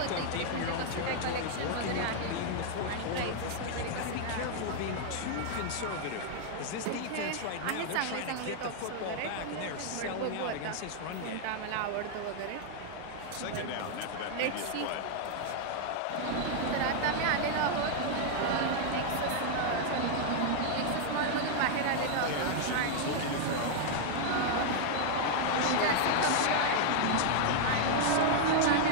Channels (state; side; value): different; both; correlation 0.00